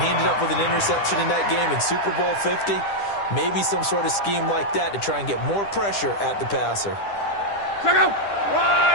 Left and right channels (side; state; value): right; late; 10 ms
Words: ended up with an interception in that game in Super Bowl 50. Maybe some sort of scheme like that to try and get more pressure at the passer. Check out.